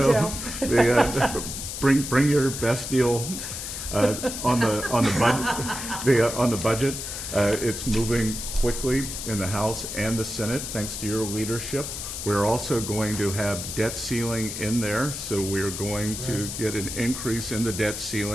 detail. bring your best deal on the budget. It's moving quickly in the House and the Senate thanks to your leadership. We're also going to have debt ceiling in there, so we're going to get an increase in the debt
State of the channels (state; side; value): noise; left; hiss, 6 dB below the sound